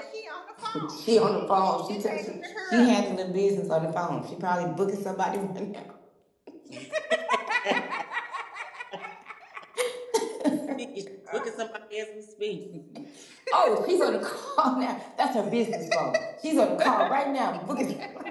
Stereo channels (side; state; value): both; identical; correlation 1.00